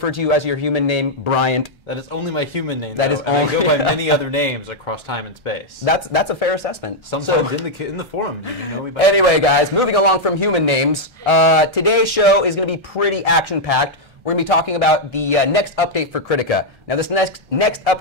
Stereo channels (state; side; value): late; left; 1.3 ms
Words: to you as your human name, Bryant. That is only my human name. That though, is and only. I go by many other names across time and space. That's a fair assessment. Sometimes So, in the forum, you know me by anyway, guys, moving along from human names, today's show is going to be pretty action-packed. We're going to be talking about the next update for Kritika. Now, this next